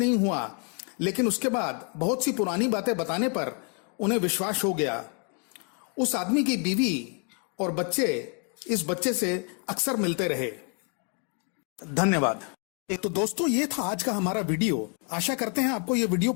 हुआ, लेकिन उसके बाद बहुत सी पुरानी बातें बताने पर उन्हें विश्वास हो गया। उस आदमी की बीवी और बच्चे इस बच्चे से अक्सर मिलते रहे। धन्यवाद। तो दोस्तों, ये था आज का हमारा वीडियो। आशा करते हैं आपको ये वीडियो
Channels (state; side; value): quieter; right; 39.6 dB